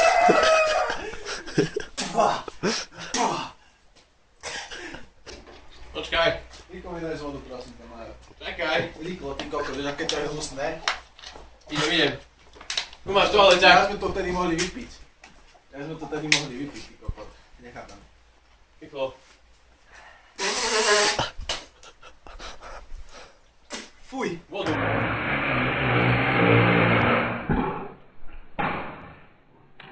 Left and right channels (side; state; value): both; identical; correlation 1.00